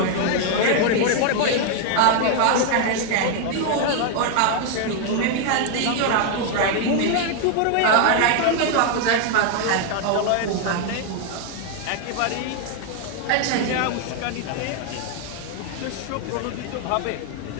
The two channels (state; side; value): different; both; correlation 0.00